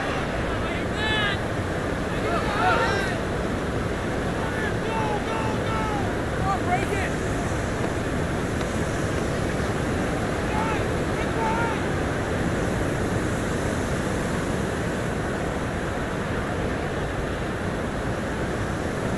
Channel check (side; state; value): both; identical; correlation 1.00